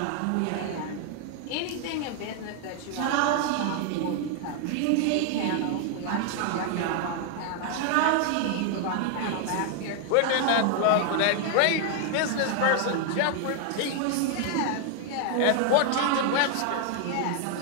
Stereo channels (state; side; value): different; both; correlation 0.00